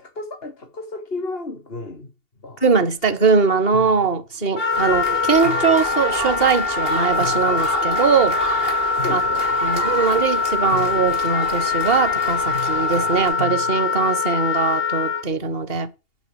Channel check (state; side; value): late; right; 2.8 ms